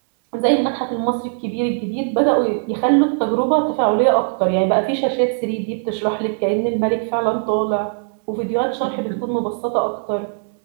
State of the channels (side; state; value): left; silent; 65 dB below the other